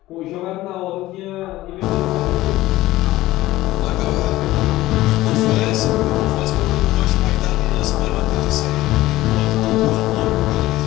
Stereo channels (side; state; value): right; quieter; 16.8 dB